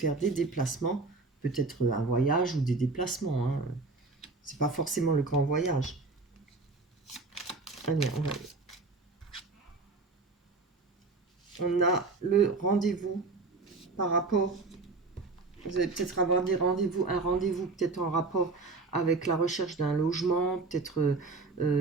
des déplacements, peut-être un voyage ou des déplacements, hein. C'est pas forcément le grand voyage. Allez, on a le rendez-vous par rapport... Vous allez peut-être avoir des rendez-vous, un rendez-vous peut-être en rapport avec la recherche d'un logement, peut-être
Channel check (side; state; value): left; quieter; 3.7 dB